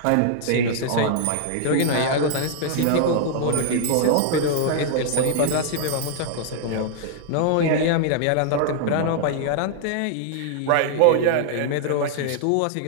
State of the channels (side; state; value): both; different; correlation -0.01